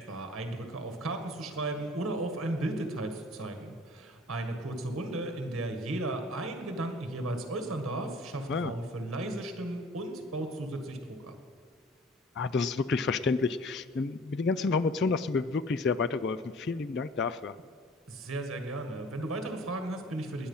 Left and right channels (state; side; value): normal; both; correlation 0.49